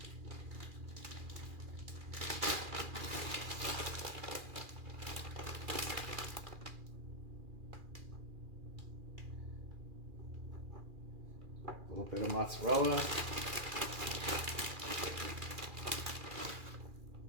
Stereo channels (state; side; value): late; left; 2.4 ms